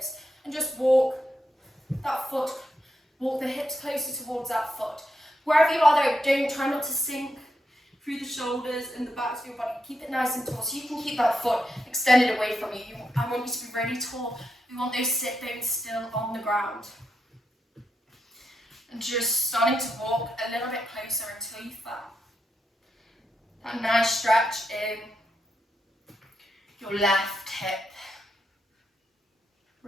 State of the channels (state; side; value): normal; both; correlation 0.84